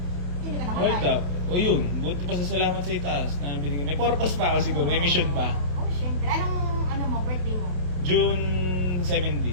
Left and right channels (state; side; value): late; left; 28 ms